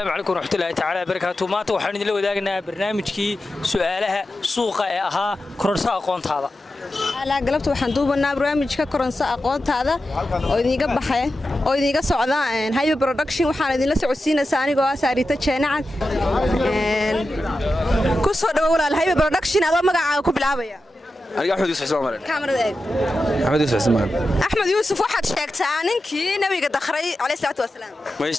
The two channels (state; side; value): normal; both; correlation 0.91